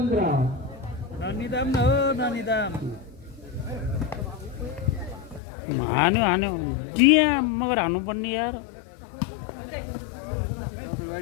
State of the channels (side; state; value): right; drops out; at 5.4 s